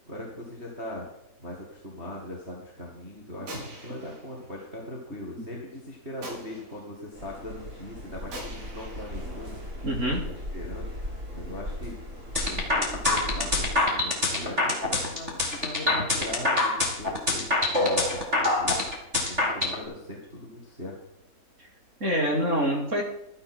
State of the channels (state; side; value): late; left; 3.4 ms